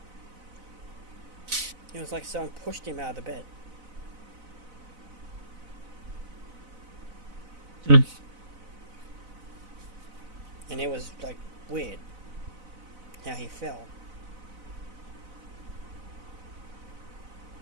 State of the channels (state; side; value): late; left; 4.0 ms